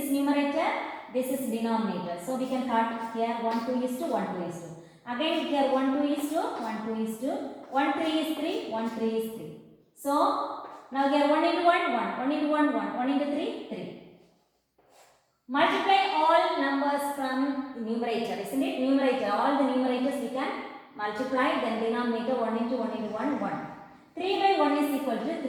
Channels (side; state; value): both; identical; correlation 1.00